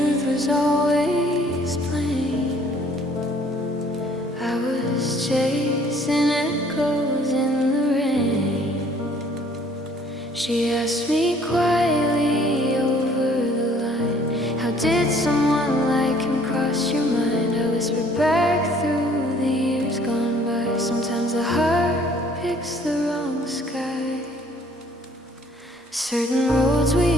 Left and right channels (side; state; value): both; normal; correlation 0.58